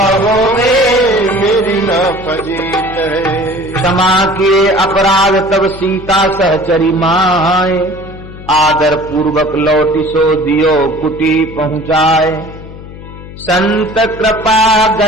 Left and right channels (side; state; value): left; noise; hum, 15 dB below the sound